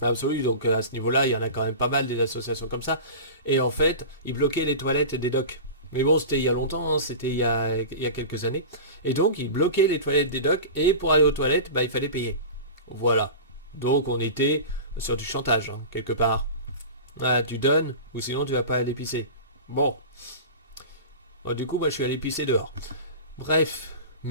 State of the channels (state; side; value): inverted; both; correlation -0.31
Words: Absolument, donc à ce niveau-là, il y en a quand même pas mal des associations comme ça. Et en fait, ils bloquaient les toilettes des docks. Mais bon, c'était il y a longtemps, hein, c'était il y a quelques années. Et donc, ils bloquaient les toilettes des docks, et pour aller aux toilettes, bah, il fallait payer. Voilà. Donc, on était sur du chantage, hein, quelque part. Ah, tu donnes, ou sinon tu vas pas aller pisser. Bon. Bon, du coup, moi, je suis allé pisser dehors. Bref.